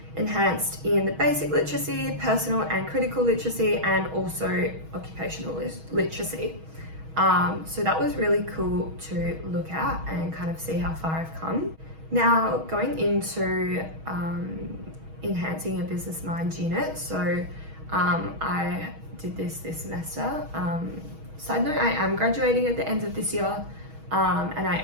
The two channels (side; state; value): left; late; 6.3 ms